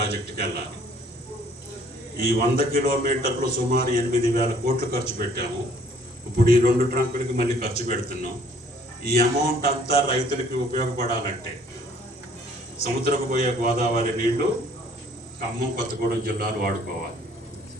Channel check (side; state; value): both; normal; correlation 0.58